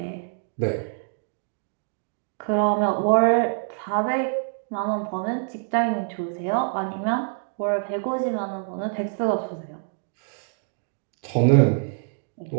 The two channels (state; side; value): silent; left; digital silence